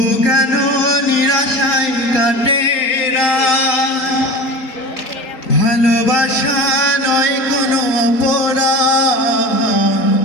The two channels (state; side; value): late; right; 3.8 ms